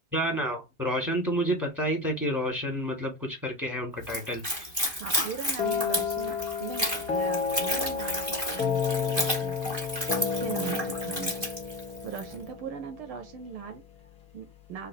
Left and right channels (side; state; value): left; late; 2.5 ms